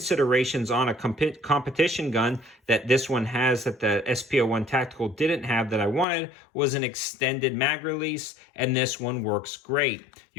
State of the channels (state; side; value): drops out; right; at 6.1 s